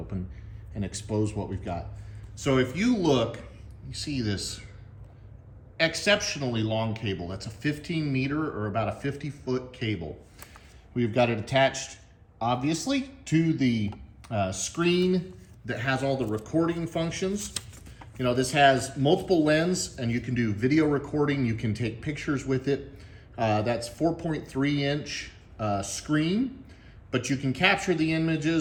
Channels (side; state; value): both; identical; correlation 1.00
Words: and expose what we've got. So if you look, you see this exceptionally long cable. That's a 15 meter or about a 50-foot cable. We've got it attached, obviously, to the screen that has all the recording functions. You know, this has multiple lens and you can do video recording. You can take pictures with it. That's 4.3 inch screen, but you can capture the